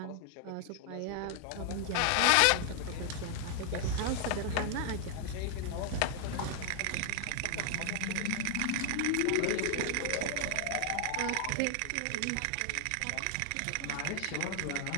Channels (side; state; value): both; different; correlation 0.00